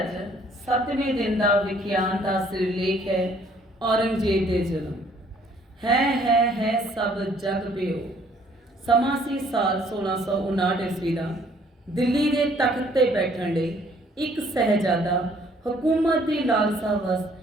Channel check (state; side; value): normal; both; correlation 0.61